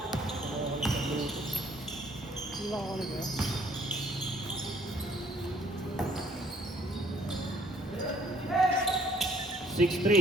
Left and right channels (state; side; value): normal; both; correlation 0.61